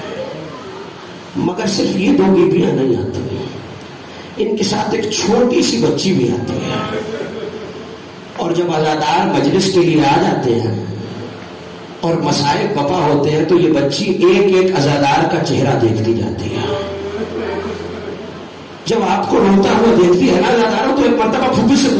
مگر صرف یہ دو بیویاں نہیں آتی ہیں, ان کے ساتھ ایک چھوٹی سی بچی بھی آتی ہے. اور جب عزادار مجلس کے لیے آ جاتے ہیں اور مسائل بپا ہوتے ہیں تو یہ بچی ایک ایک عزادار کا چہرہ دیکھتی جاتی ہے. جب آپ کو روتا ہوا دیکھتی ہے نا عزاداروں تو ایک مرتبہ پھوپھی سے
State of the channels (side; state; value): both; identical; correlation 1.00